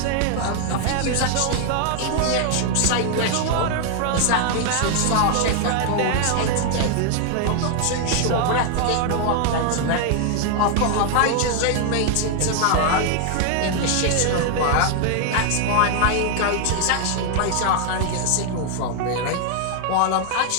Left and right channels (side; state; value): both; different; correlation 0.00